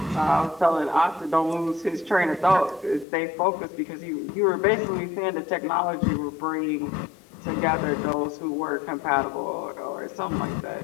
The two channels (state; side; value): drops out; right; at 3.1 s